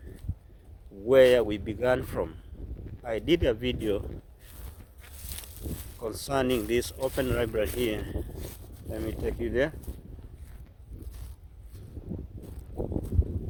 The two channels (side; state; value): both; identical; correlation 1.00